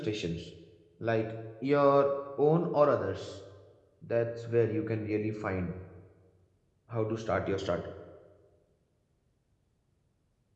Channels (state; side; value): identical; both; correlation 1.00